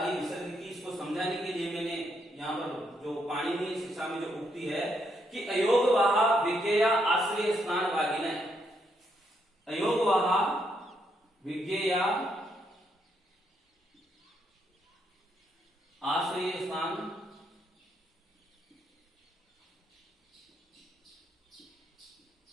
विसर्ग की। इसको समझाने के लिए मैंने यहाँ पर जो पाणिनीय शिक्षा में जो उक्ति है कि अयोगवाह विज्ञेया आश्रय स्थान भागिना, अयोगवाह विज्ञेया आश्रय स्थान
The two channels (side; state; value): both; normal; correlation 0.76